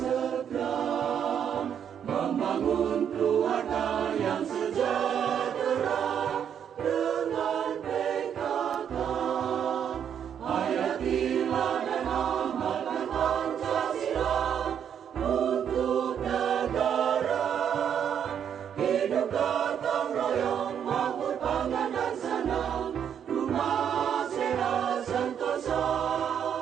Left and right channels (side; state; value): left; quieter; 8.5 dB